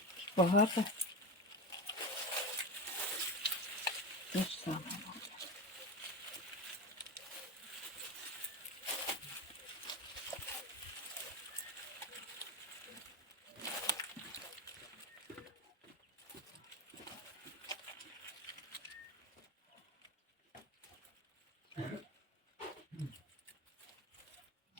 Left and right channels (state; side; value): normal; both; correlation 0.20